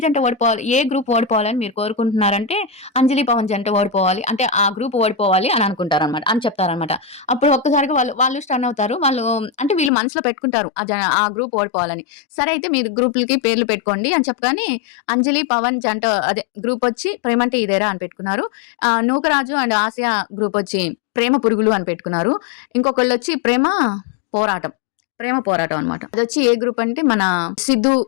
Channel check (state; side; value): drops out; right; at 9.9 s